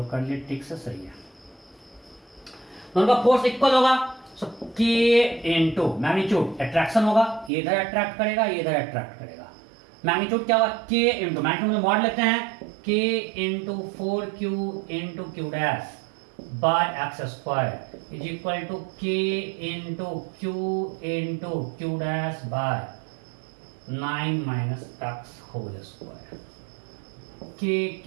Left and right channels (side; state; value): left; drops out; at 7.5 s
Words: कर लिए ठीक से सही है। दोनों का फोर्स इक्वल होगा, सो k इंटू मैग्नीट्यूड, अट्रैक्शन होगा, ये इधर अट्रैक्ट करेगा, ये इधर अट्रैक्ट करेगा। मैग्नीट्यूड क्या होगा, k इंटू, मैग्नीट्यूड में मॉड लेते हैं, k into 4q into Q dash by x square is equal to k into q dash by 9 minus x whole square. k